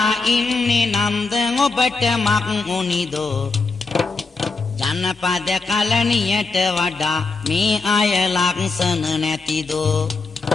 ඉන්නේ නන්ද ඔබට මක් උනිදෝ ජනපද කලණියට වඩා මේ අය ලක්ෂණ නැතිදෝ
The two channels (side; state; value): right; quieter; 4.1 dB